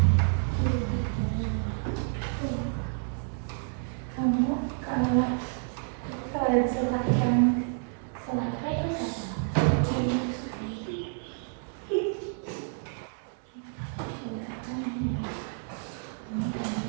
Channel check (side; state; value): left; silent; 58 dB below the other